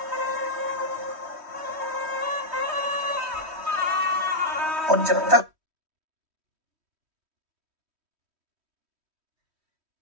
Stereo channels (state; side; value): late; left; 3.1 ms